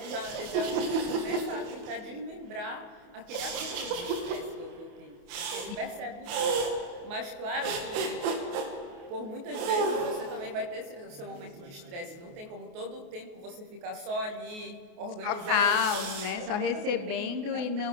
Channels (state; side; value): late; left; 28 ms